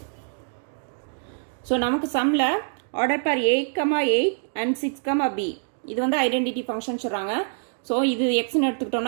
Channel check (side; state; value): left; silent; digital silence